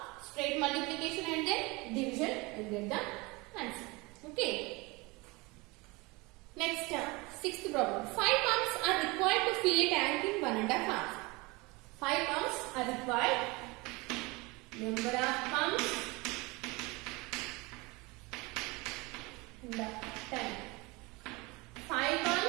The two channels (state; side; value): quieter; left; 24.9 dB